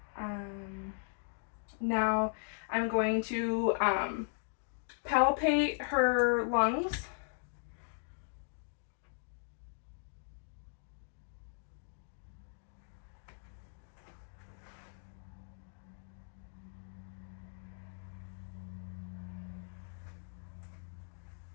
Now I'm going to palpate her lungs.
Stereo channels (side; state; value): right; silent; digital silence